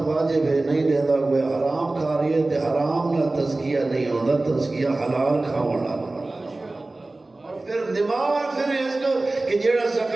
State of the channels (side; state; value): left; quieter; 3.0 dB